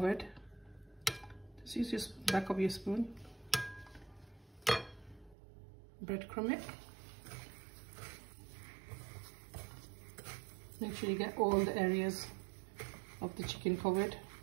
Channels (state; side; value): drops out; left; at 5.4 s